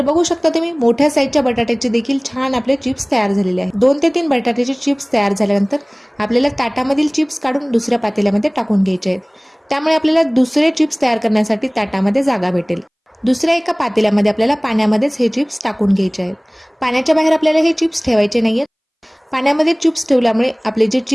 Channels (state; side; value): identical; both; correlation 1.00